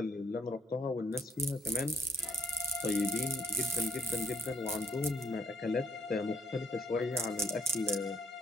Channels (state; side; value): normal; both; correlation 0.70